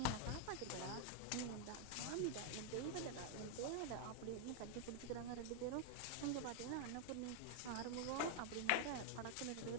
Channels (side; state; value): both; different; correlation 0.00